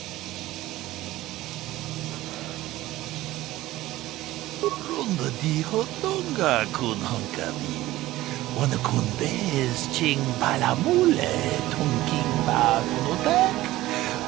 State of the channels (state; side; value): quieter; left; 16.6 dB